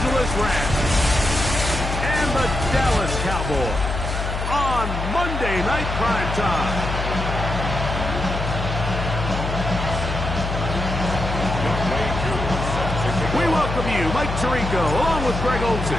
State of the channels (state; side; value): noise; left; hum, 3 dB below the sound